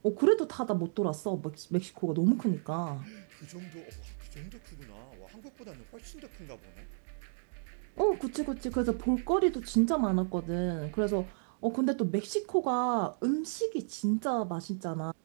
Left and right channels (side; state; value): left; silent; digital silence